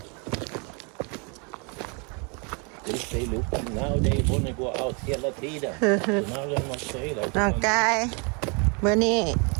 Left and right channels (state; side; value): quieter; left; 34.1 dB